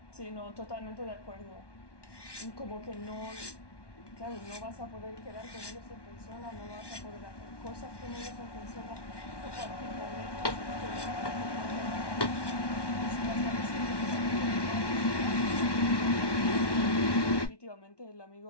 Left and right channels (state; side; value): late; right; 1.2 ms